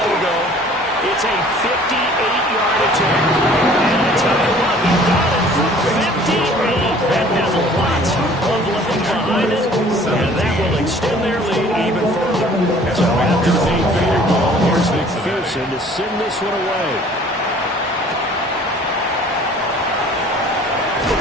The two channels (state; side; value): normal; both; correlation 0.52